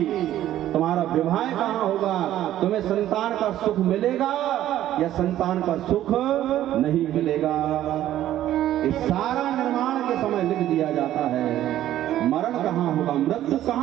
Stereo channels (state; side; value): quieter; left; 12.8 dB